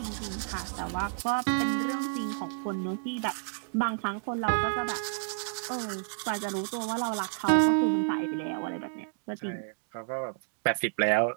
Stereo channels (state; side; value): silent; left; digital silence